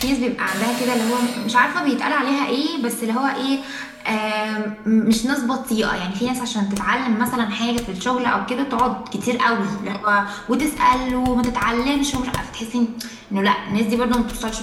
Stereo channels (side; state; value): both; identical; correlation 1.00